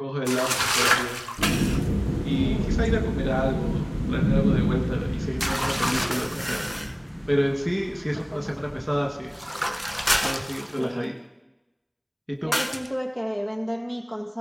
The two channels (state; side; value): identical; both; correlation 1.00